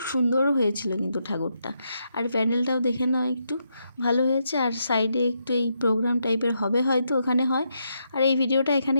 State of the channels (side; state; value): both; inverted; correlation -0.81